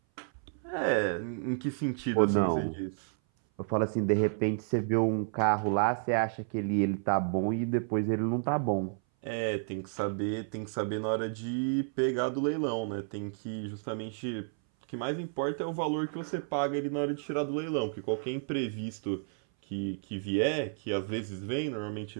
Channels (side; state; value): left; silent; 57 dB below the other